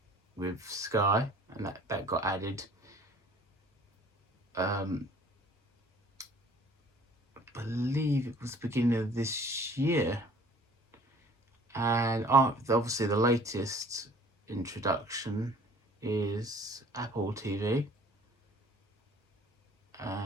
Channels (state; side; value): normal; both; correlation 0.52